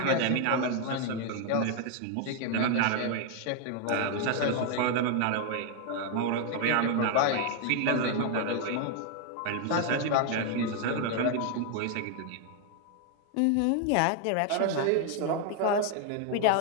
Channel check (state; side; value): different; both; correlation 0.00